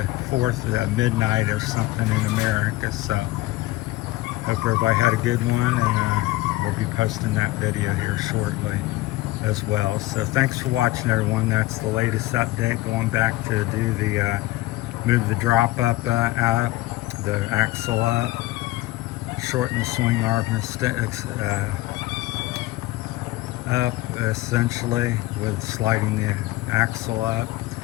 4th midnight or something in America, so hope everybody had a good one, and we'll be posting that video here shortly as well. So thanks for watching, everyone. That's the latest update. Going back to do the move the drop up out, the axle up, shorten the swing arm up essentially with sliding the axle up,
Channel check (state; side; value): quieter; right; 18.5 dB